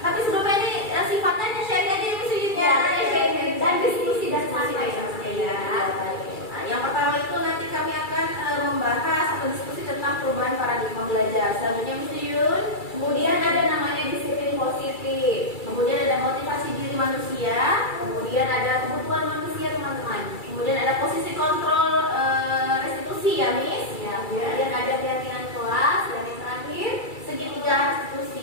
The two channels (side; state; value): right; late; 2.3 ms